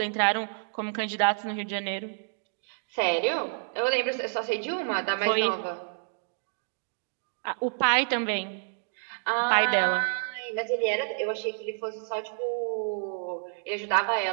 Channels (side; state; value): left; silent; digital silence